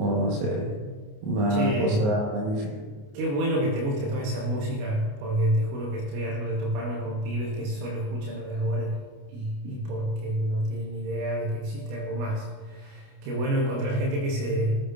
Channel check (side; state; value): left; late; 28 ms